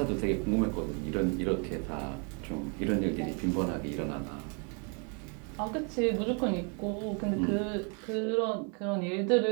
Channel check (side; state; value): left; quieter; 36.5 dB